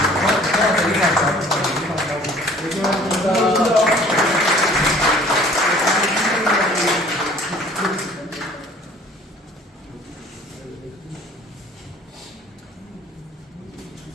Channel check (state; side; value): normal; both; correlation 0.52